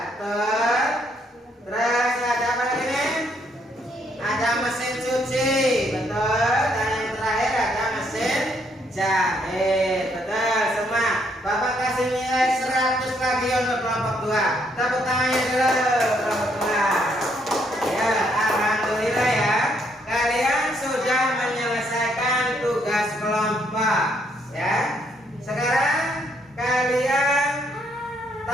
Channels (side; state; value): both; normal; correlation 0.71